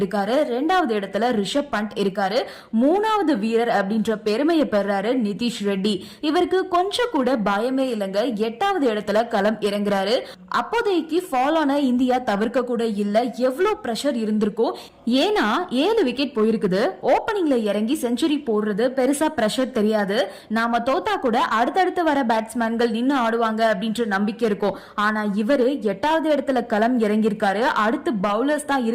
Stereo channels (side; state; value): both; identical; correlation 1.00